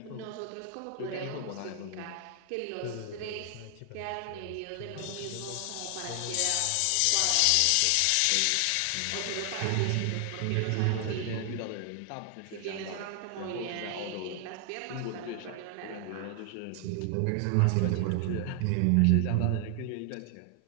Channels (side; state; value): both; different; correlation 0.00